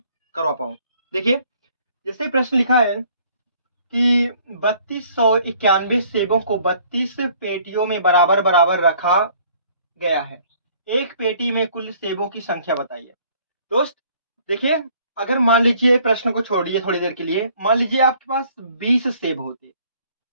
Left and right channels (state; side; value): inverted; both; correlation -0.59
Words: करवा पाऊँ। देखिए, जैसे प्रश्न लिखा है कि 3291 सेबों को 32 पेटियों में बराबर बराबर रखा गया है। एक पेटी में कुल सेबों की संख्या बताइए। दोस्त देखिए, अगर मान लीजिए प्रश्न को छोड़िए थोड़ी देर के लिए, मान लीजिए आपके पास 20